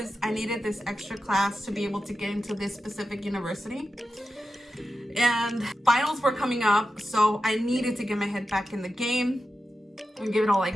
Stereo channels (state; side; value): normal; both; correlation 0.91